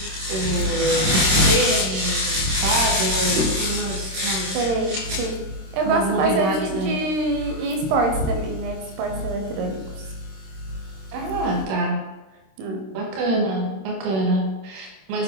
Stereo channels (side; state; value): left; late; 26 ms